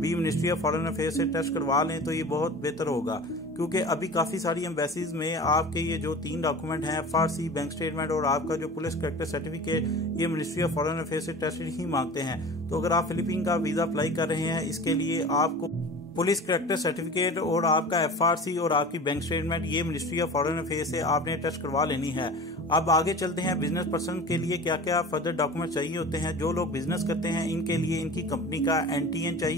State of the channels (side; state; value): both; normal; correlation 0.37